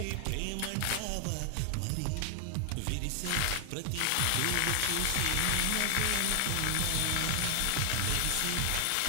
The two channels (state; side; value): different; both; correlation 0.00